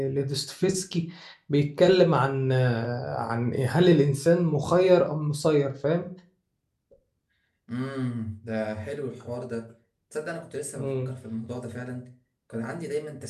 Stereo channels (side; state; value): both; identical; correlation 1.00